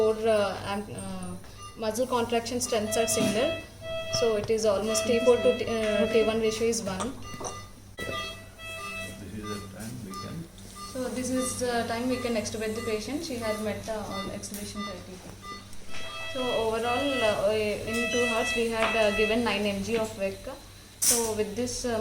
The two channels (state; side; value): identical; both; correlation 1.00